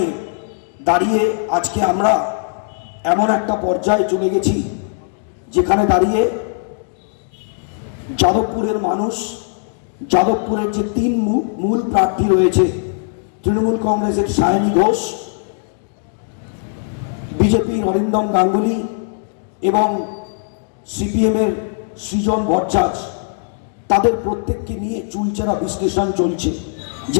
দাঁড়িয়ে আজকে আমরা এমন একটা পর্যায়ে চলে গেছি যেখানে দাঁড়িয়ে যাদবপুরের মানুষ, যাদবপুরের যে তিন মূল প্রার্থী রয়েছে, তৃণমূল কংগ্রেসের সায়নী ঘোষ, বিজেপির অরিন্দম গাঙ্গুলি এবং সিপিএমের সৃজন ভট্টাচার্য, তাদের প্রত্যেককে নিয়ে চুলচেরা বিশ্লেষণ চলছে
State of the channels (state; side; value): silent; right; digital silence